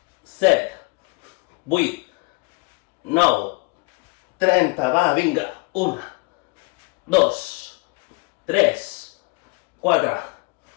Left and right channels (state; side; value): quieter; right; 28.7 dB